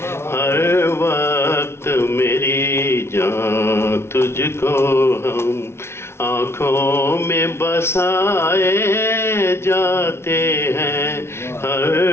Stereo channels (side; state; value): right; late; 0.12 ms